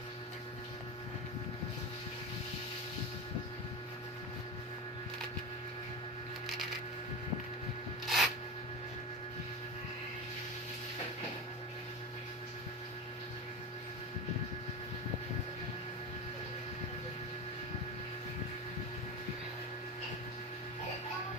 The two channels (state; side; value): normal; both; correlation 0.22